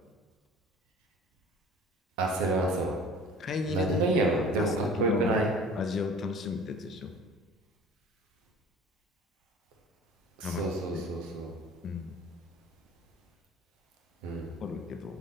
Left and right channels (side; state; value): both; normal; correlation 0.45